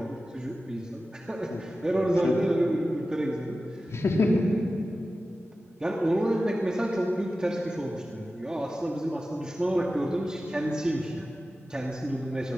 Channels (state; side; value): normal; both; correlation 0.94